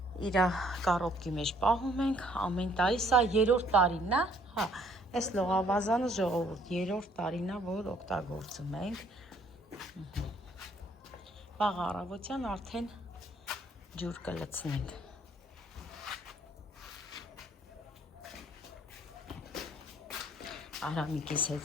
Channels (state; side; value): normal; both; correlation 0.63